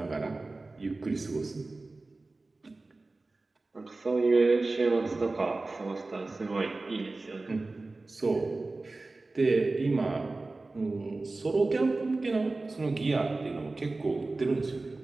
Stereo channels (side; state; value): left; quieter; 3.3 dB